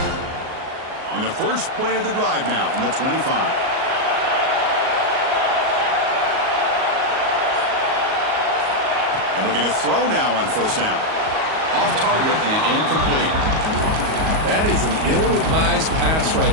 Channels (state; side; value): late; left; 38 ms